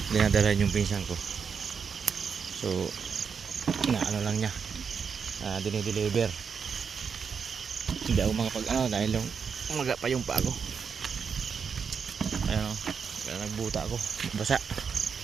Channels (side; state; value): left; quieter; 6.3 dB